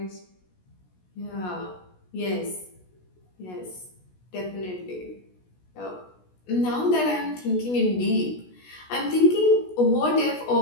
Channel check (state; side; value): late; right; 16 ms